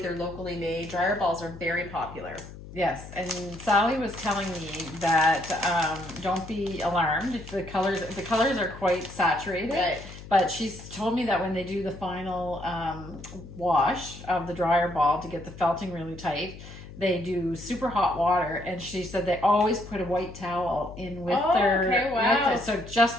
locally made. Dryer balls are very popular. Yes, and Sally was telling me that don't be alarmed if the colors are quite saturated. Right. But she's told me that when they do the final wash of the dryer ball to get the felting really tight, they do super hot water, and she said they always put a white towel in with so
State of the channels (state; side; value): noise; left; hum, 15 dB below the sound